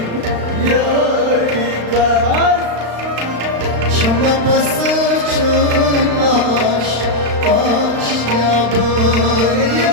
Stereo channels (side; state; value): left; late; 35 ms